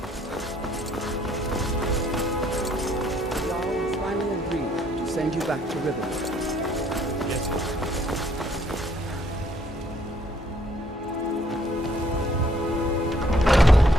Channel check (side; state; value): both; normal; correlation 0.65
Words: Send you back to Riverwood.